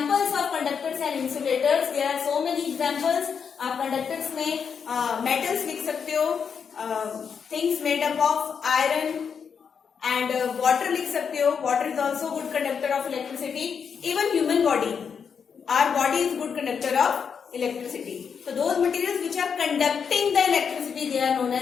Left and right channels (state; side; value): quieter; right; 6.6 dB